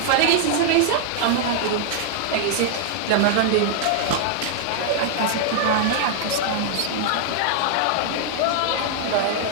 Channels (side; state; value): both; different; correlation 0.00